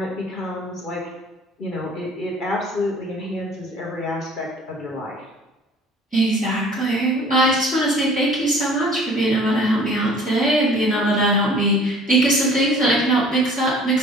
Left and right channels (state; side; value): normal; both; correlation 0.50